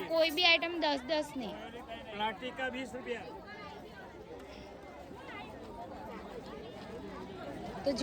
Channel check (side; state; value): both; identical; correlation 1.00